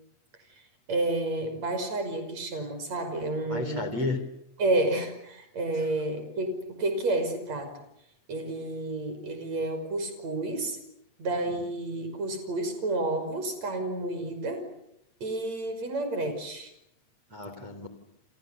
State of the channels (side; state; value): left; late; 8.8 ms